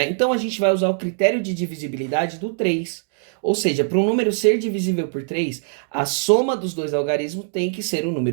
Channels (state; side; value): silent; left; digital silence